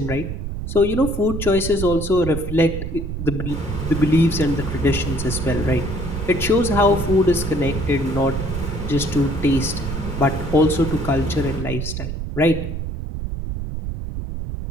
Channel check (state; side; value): noise; right; rumble, 5 dB below the sound